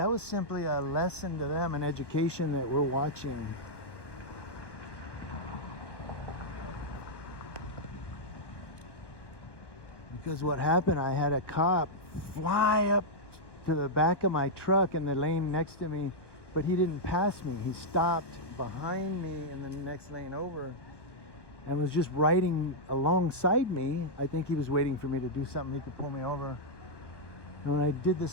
was simply a lesson to them, an education that we're watching. Because what happened, I had a cop fly up to the back of my truck in the lane next to me, but he didn't pass me. He stopped behind me in the next lane over and was just riding alongside me. I think he was waiting for me to do something. He could pull me over. And when I did the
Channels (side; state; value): right; late; 1.1 ms